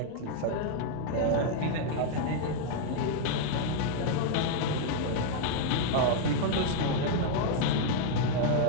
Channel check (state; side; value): different; both; correlation -0.01